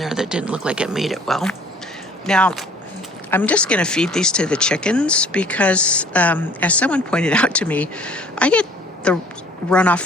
that didn't look like it made it well. Now, I'm just going to feed these to the chickens because, as someone pointed out to me, I get the runoff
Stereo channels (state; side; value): normal; both; correlation 0.53